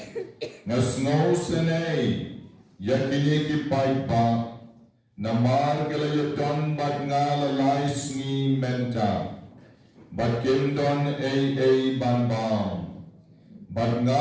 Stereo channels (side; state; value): both; identical; correlation 1.00